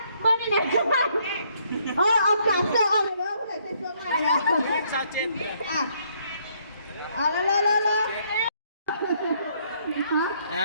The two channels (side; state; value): both; inverted; correlation -0.69